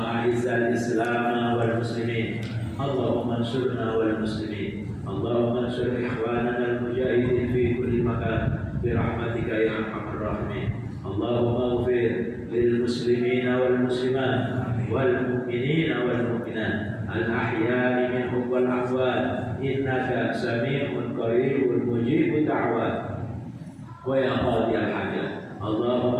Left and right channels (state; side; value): identical; both; correlation 1.00